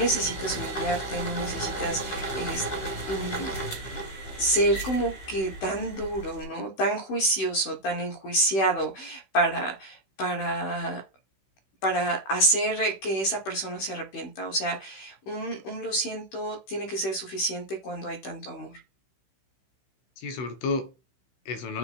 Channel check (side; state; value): right; late; 16 ms